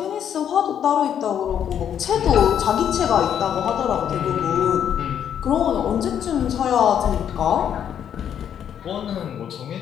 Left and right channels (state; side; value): quieter; right; 9.1 dB